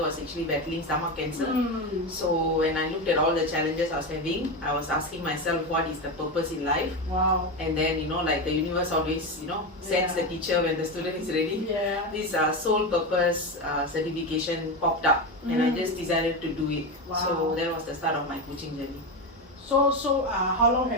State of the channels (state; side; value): normal; both; correlation 0.16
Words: was actually battling stomach cancer. So when I looked at all the challenges I was having, I was asking myself, what is the purpose in life? Wow. And then, like the universe always, sends the teacher when the student is ready. Yeah. This soul purpose certification popped up, and I just decided to do it. Wow. So that was the start of my coaching journey. So how long